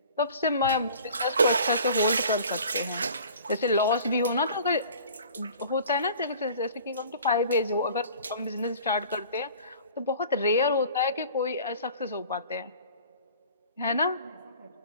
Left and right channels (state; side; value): inverted; both; correlation -0.46